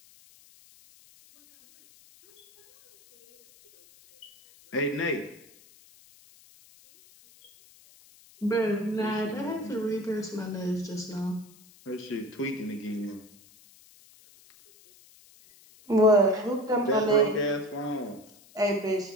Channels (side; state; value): left; noise; hiss, 26 dB below the sound